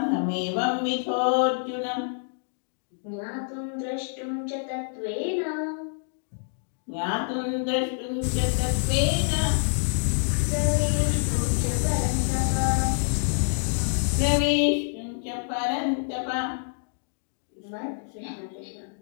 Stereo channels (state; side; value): silent; right; digital silence